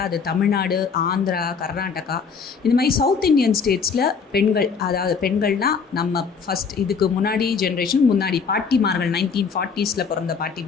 அது தமிழ்நாடு, ஆந்திரா, கர்நாடகா, இந்த மாதிரி சவுத் இந்தியன் ஸ்டேட்ஸில் பெண்கள், அதாவது பெண்கள்னால் நம்ம ஃபஸ்ட் இதுக்கு முன்னாடி ஜென்ரேஷன் முன்னாடி பாட்டிமார்கள் 1940s பிறந்த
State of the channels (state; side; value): quieter; right; 5.7 dB